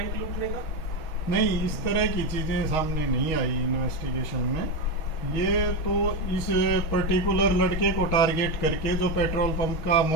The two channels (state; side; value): late; right; 6.2 ms